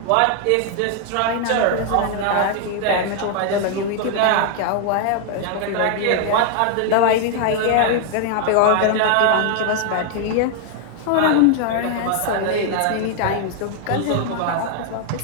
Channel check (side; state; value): both; different; correlation 0.00